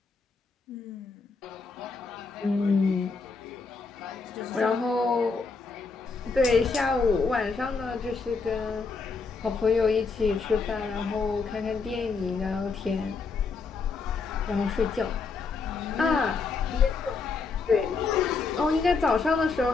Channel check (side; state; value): right; quieter; 4.6 dB